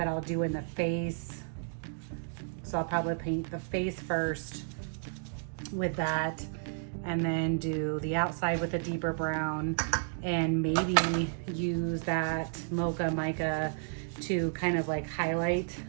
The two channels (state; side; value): silent; left; digital silence